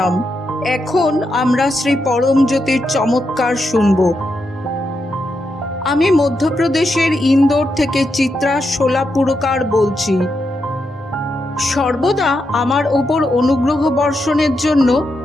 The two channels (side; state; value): both; normal; correlation 0.84